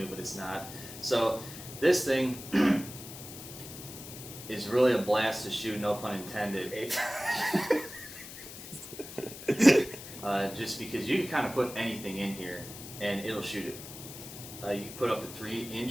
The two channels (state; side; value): noise; left; hiss, 13 dB below the sound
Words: but it's not. So this thing is really a blast to shoot, no pun intended. Just because you can kind of put anything in here and it'll shoot it. You can put up to